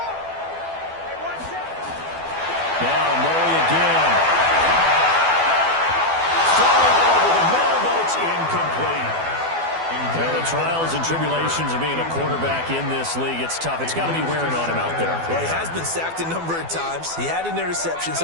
Now Murray again. Throwing over the middle, but it's incomplete. Well, the trials and tribulations of being a quarterback in this league, it's tough. It's got to be wearing on him out there. Well, he has been sacked a number of times. He had an interception,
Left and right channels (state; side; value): late; left; 12 ms